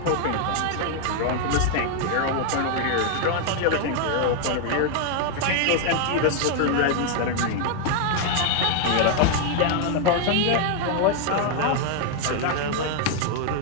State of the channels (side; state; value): both; different; correlation 0.00